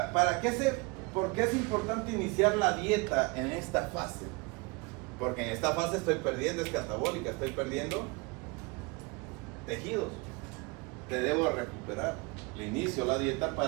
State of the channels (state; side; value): quieter; left; 27.5 dB